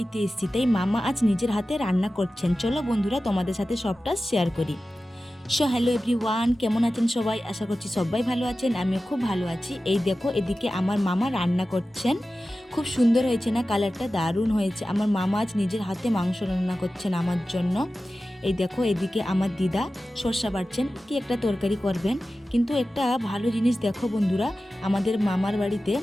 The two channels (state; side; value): normal; both; correlation 0.95